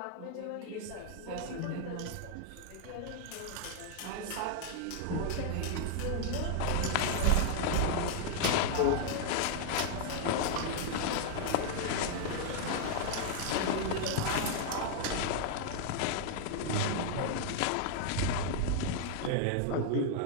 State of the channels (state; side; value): different; both; correlation 0.00